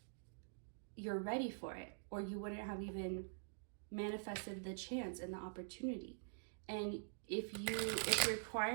you're ready for it, or you wouldn't have even manifested the chance and the opportunity. And if it's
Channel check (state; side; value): silent; left; digital silence